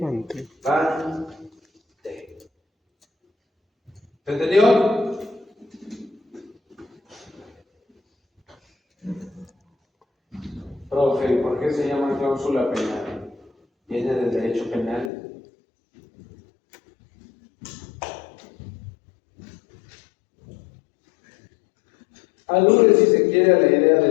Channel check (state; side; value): drops out; right; at 15.1 s